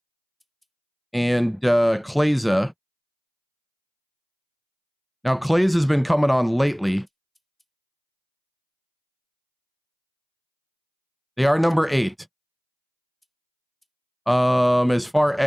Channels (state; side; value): identical; both; correlation 1.00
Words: and Kleza. Now, Clays has been coming on lately. They are number 8. As far